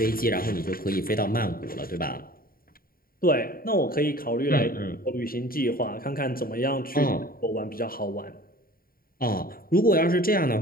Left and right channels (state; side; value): late; right; 0.43 ms